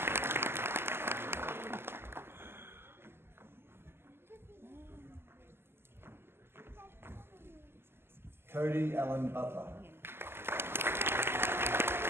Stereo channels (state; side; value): late; left; 0.12 ms